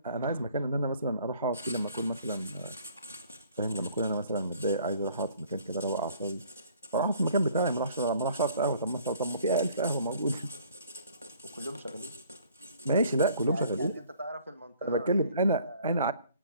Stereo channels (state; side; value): inverted; both; correlation -0.56